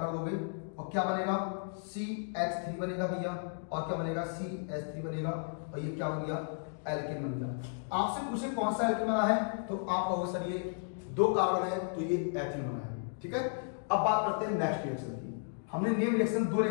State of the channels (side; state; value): right; silent; digital silence